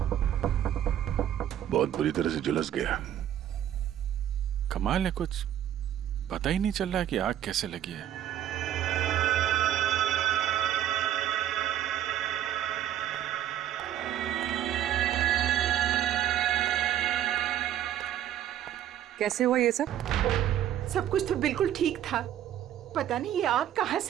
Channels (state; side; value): quieter; left; 11.4 dB